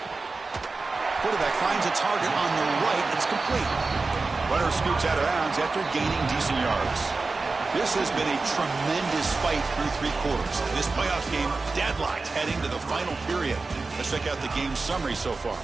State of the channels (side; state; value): left; quieter; 3.8 dB